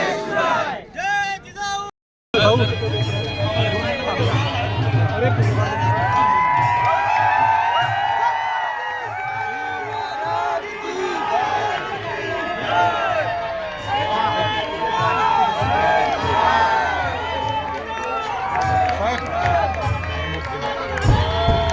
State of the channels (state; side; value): identical; both; correlation 1.00